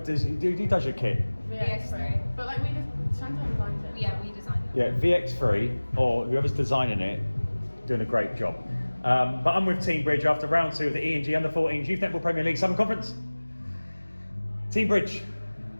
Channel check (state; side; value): inverted; both; correlation -1.00